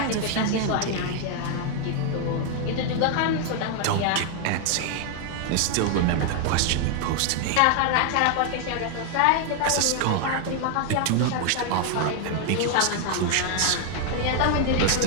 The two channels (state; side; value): different; both; correlation 0.00